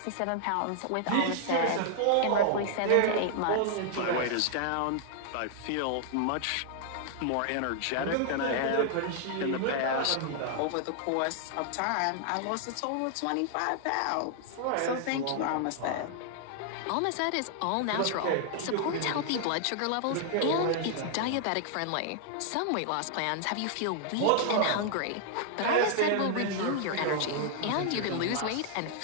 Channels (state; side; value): different; both; correlation 0.00